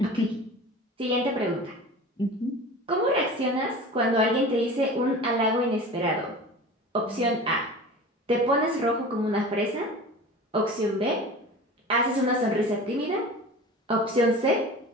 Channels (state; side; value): normal; both; correlation 0.36